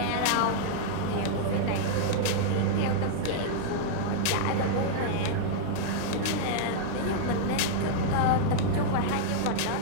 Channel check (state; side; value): different; both; correlation -0.02